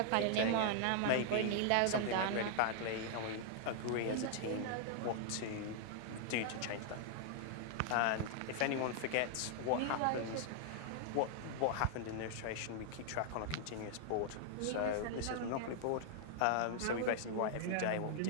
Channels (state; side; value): different; both; correlation -0.01